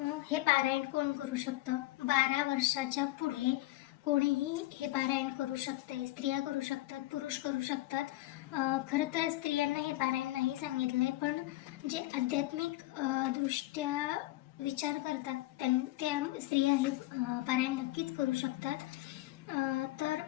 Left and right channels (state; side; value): quieter; right; 18.0 dB